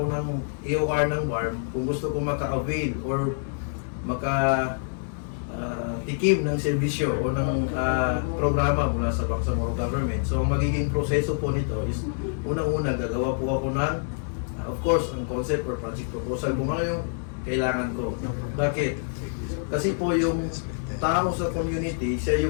ng EOR ng BARM, kung gusto ko maka-avail or tikim ng serbisyo o ng programa mula sa Bangsamoro Government. So, ang magiging proseso po nito is unang-una, gagawa po ako ng, of course, ang concept or project proposal kung ano yung kailangan ko. Bakit? Kasi po yung tao sa community,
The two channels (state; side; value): silent; right; 59 dB below the other